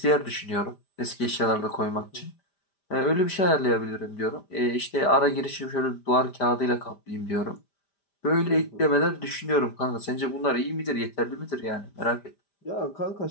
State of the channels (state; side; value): late; right; 5.0 ms